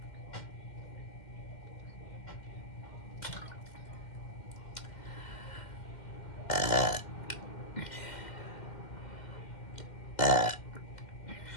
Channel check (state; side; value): late; right; 2.1 ms